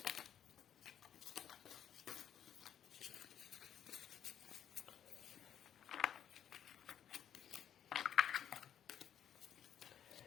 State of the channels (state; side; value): quieter; right; 9.6 dB